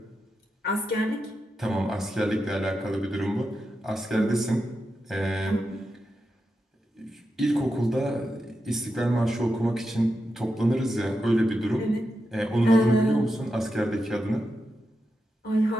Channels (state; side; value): normal; both; correlation 0.88